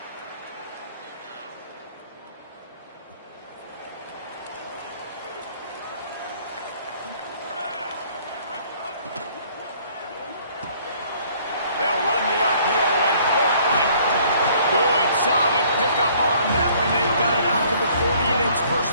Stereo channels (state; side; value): inverted; both; correlation -0.59